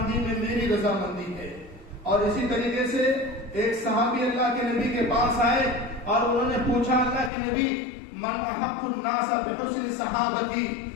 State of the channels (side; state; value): right; drops out; at 7.3 s